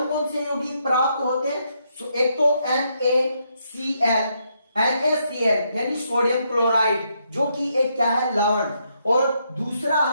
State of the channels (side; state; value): both; inverted; correlation -0.77